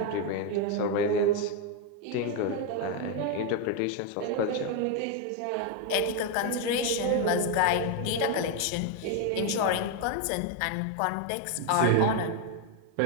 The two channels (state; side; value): different; both; correlation 0.01